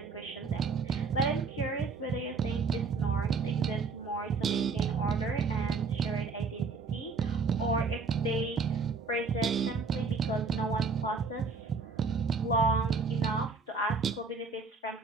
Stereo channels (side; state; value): left; quieter; 4.7 dB